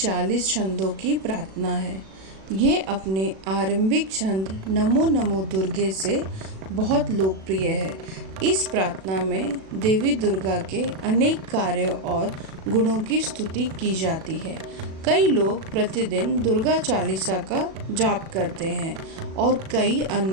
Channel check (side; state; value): left; late; 37 ms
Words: छंदों की प्रार्थना है। ये अपने आरंभिक छंद नमो नमो दुर्गे से बहुत लोकप्रिय है। इस प्रार्थना में देवी दुर्गा के अनेक कार्यों और गुणों की स्तुति की जाती है। कई लोग प्रतिदिन दुर्गा चालीसा का जाप करते हैं और कई